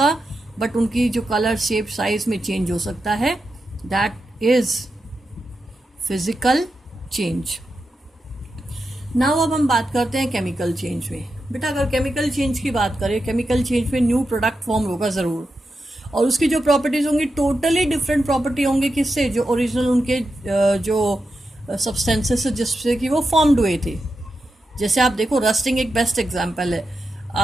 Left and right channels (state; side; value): normal; both; correlation 0.88